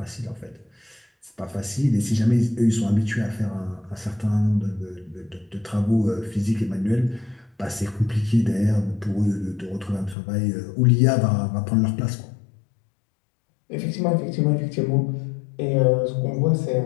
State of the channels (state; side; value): drops out; right; at 10.2 s